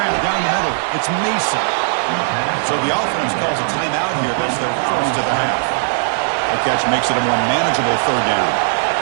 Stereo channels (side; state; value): left; silent; digital silence